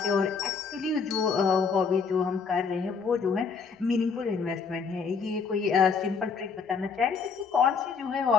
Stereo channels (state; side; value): quieter; right; 5.5 dB